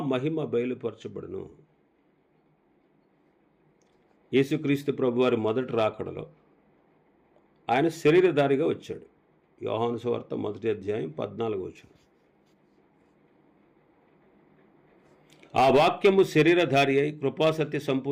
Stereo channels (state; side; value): identical; both; correlation 1.00